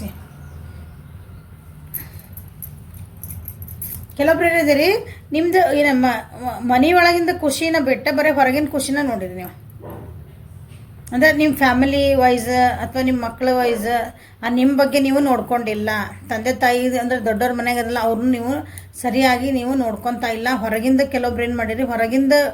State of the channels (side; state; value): both; identical; correlation 1.00